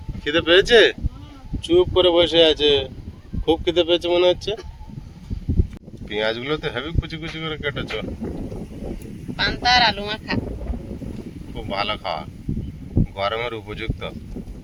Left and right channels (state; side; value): identical; both; correlation 1.00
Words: খিদে পেয়েছে? চুপ করে বসে আছে, খুব খিদে পেয়েছে মনে হচ্ছে। পেঁয়াজগুলো তো হেভি কুচি কুচি করে কেটেছো। পান্তা আর আলু মাখা। খুব ভালো খাওয়া, গরমের উপযুক্ত।